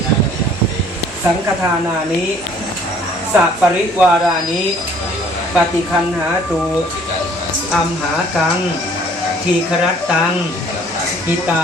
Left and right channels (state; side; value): normal; both; correlation 0.57